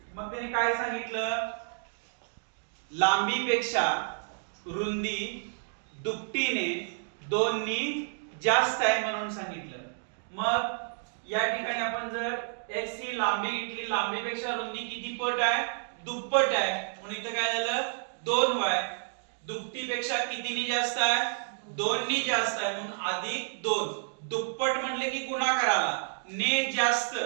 मग त्याने काय सांगितलं, लांबीपेक्षा रुंदी दुपटीने 2 नी जास्त आहे म्हणून सांगितलं. मग या ठिकाणी आपण जर x ही लांबी घेतली, लांबीपेक्षा रुंदी किती पट आहे, दुप्पट आहे म्हणून इथं काय झालं 2y. दुपटीपेक्षा कितीनी जास्त आहे, 2 नी जास्त आहे म्हणून अधिक 2. दुप्पट म्हणले की गुणाकाराला, ने जास्त,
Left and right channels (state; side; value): silent; left; digital silence